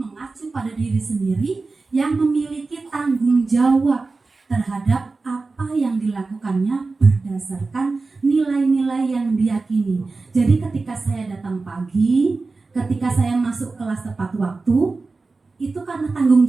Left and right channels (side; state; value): left; quieter; 3.8 dB